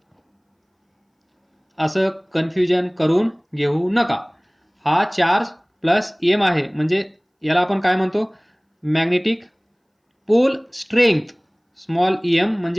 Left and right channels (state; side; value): identical; both; correlation 1.00